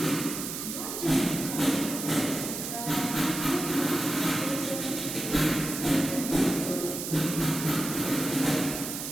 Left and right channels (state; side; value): noise; right; hiss, 5 dB below the sound